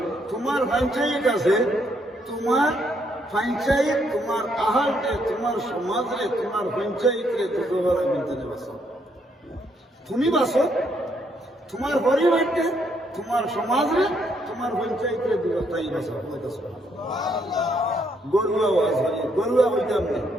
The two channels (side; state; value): both; normal; correlation 0.73